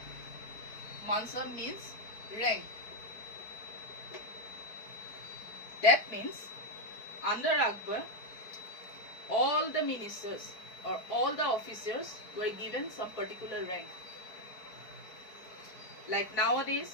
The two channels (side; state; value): right; late; 4.6 ms